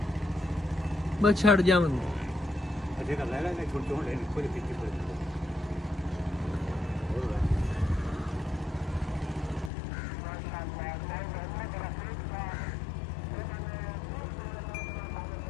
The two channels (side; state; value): right; drops out; at 9.7 s